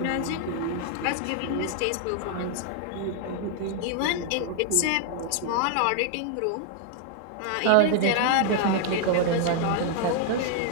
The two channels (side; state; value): both; different; correlation 0.00